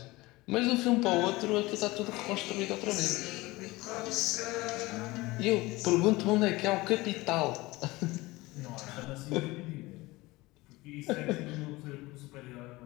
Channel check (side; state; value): right; quieter; 20.9 dB